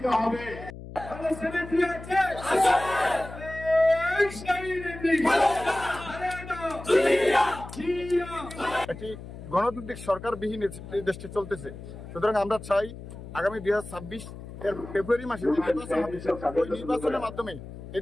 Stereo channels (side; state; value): left; noise; hum, 13 dB below the sound